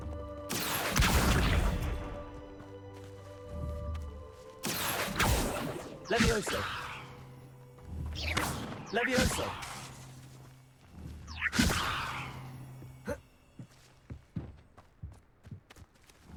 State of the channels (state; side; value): identical; both; correlation 1.00